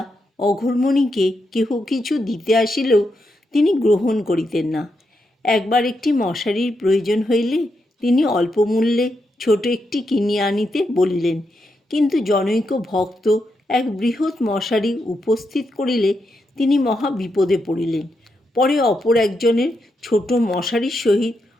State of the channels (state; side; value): normal; both; correlation 0.83